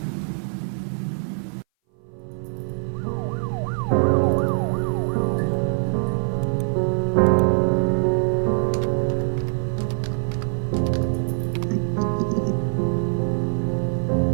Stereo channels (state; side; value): silent; left; 59 dB below the other